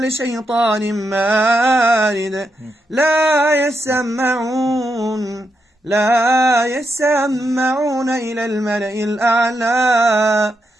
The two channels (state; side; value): normal; both; correlation 0.83